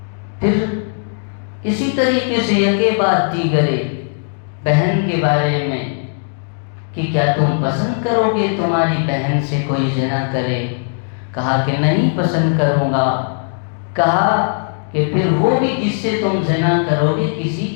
پھر اسی طریقے سے یکے بعد دیگرے بہن کے بارے میں کہ کیا تم پسند کرو گے تمہاری بہن سے کوئی زنا کرے؟ کہا کہ نہیں پسند کروں گا۔ کہا کہ پھر وہ بھی جس سے تم زنا کرو گے کسی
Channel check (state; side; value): silent; right; digital silence